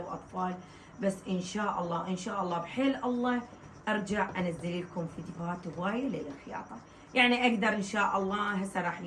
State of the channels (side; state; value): both; identical; correlation 1.00